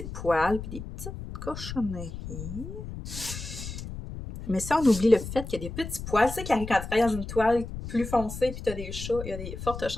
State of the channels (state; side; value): noise; left; rumble, 9 dB below the sound